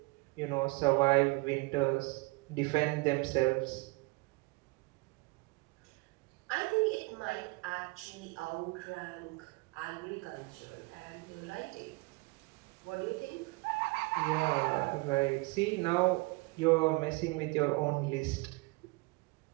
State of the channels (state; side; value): quieter; left; 25.9 dB